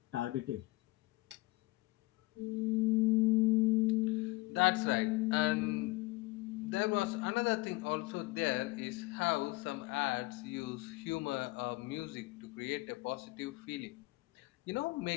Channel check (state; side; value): quieter; right; 21.7 dB